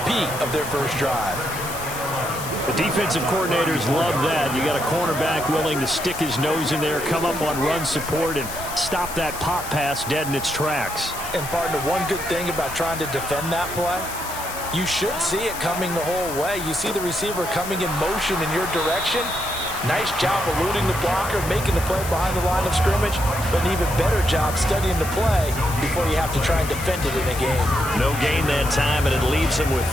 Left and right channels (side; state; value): left; noise; hiss, 10 dB below the sound